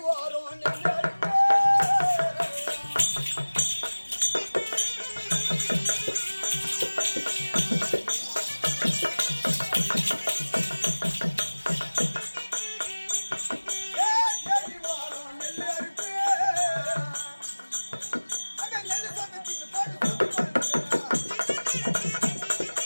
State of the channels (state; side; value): inverted; both; correlation -1.00